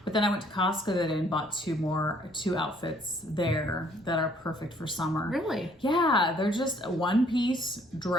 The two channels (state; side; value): normal; both; correlation 0.62